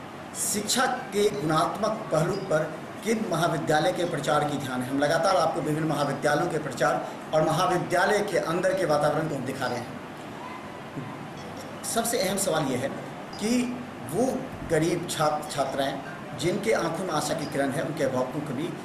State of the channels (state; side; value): identical; both; correlation 1.00